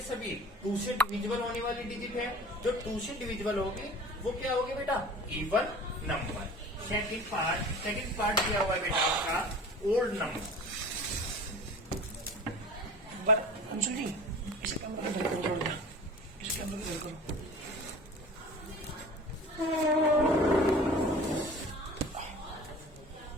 सभी 2 से डिविजिबल होने वाली डिजिट है। जो 2 से डिविजिबल होगी वो क्या होगी बेटा, इवन नंबर। सेकंड पार्ट क्या हुआ है बेटा आपका, ओल्ड नंबर। अंशुल जी, इस कैमरा को इधर करो, इस कैमरा को इधर करो।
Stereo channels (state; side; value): normal; both; correlation 0.40